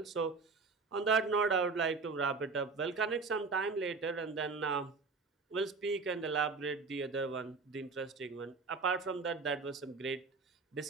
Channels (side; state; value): left; quieter; 4.4 dB